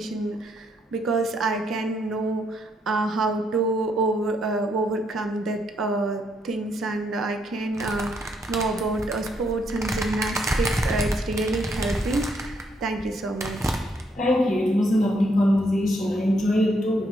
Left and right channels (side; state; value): both; normal; correlation 0.74